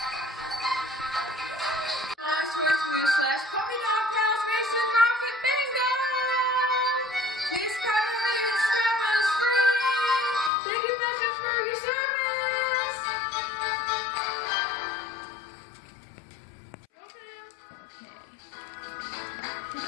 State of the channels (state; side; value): drops out; right; at 10.5 s